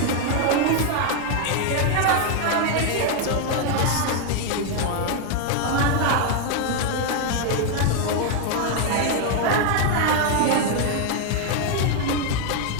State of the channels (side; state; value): both; different; correlation 0.01